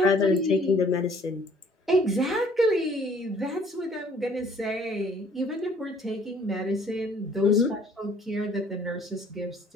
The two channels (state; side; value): normal; both; correlation 0.58